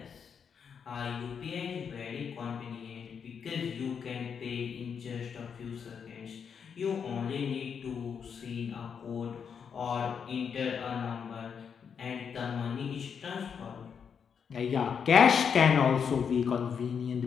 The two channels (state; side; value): quieter; right; 6.9 dB